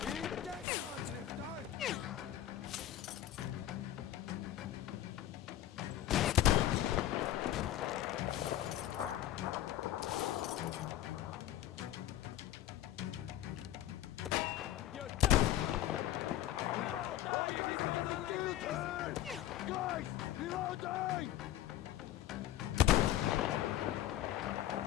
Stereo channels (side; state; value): right; quieter; 13.0 dB